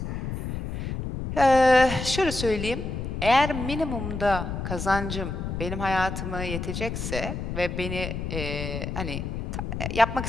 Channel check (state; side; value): noise; left; rumble, 5 dB below the sound